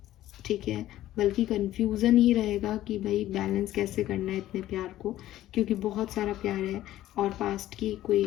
ठीक है। बल्कि कन्फ्यूज़न ही रहेगा कि भाई बैलेंस कैसे करना है इतने प्यार को, क्योंकि बहुत सारा प्यार है और पास्ट की कोई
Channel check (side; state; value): right; quieter; 14.0 dB